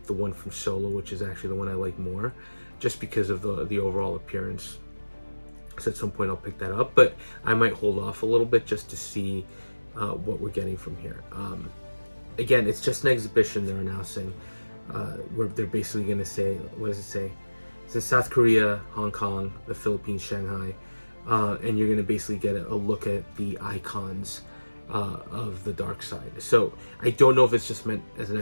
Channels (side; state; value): both; inverted; correlation -1.00